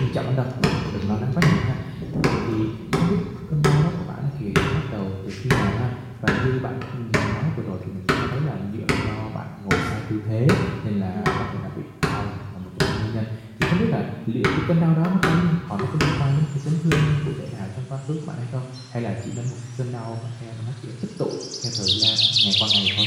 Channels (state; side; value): identical; both; correlation 1.00